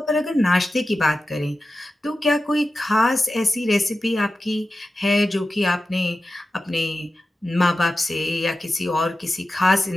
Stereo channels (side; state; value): both; normal; correlation 0.93